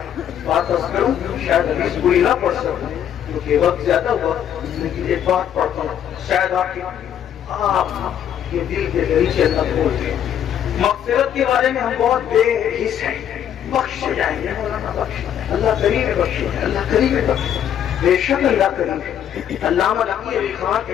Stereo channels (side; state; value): right; quieter; 9.7 dB